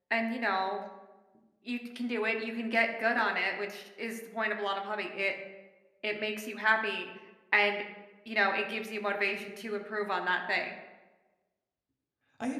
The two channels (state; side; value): identical; both; correlation 1.00